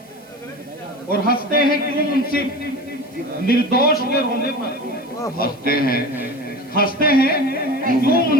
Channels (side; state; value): right; noise; hiss, 28 dB below the sound